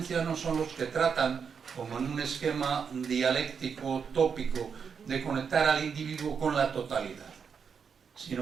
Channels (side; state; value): left; quieter; 6.4 dB